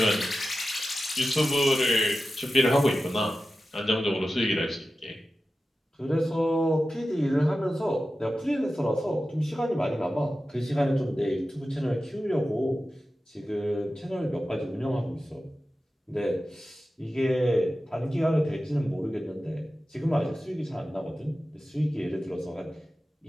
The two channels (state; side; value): normal; both; correlation 0.93